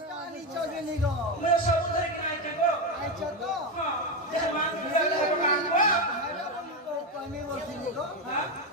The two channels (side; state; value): both; normal; correlation 0.11